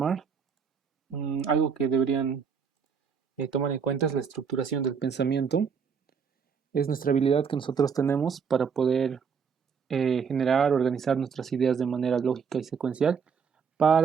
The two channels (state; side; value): quieter; left; 6.4 dB